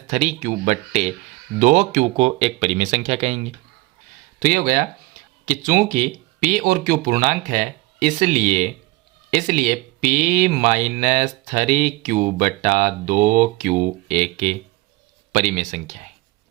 3Q बट्टे दो क्यू को एक परिमेय संख्या कहेंगे। तो ये हो गया कि चूंकि p और q पूर्णांक है, इसलिए p माइनस 3q बटा 2q एक परिमेय संख्या है,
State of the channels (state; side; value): quieter; left; 21.4 dB